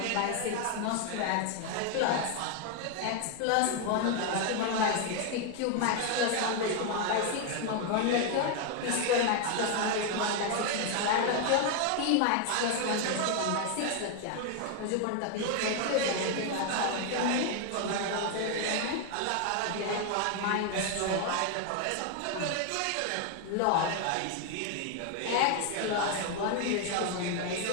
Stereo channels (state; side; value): different; both; correlation 0.01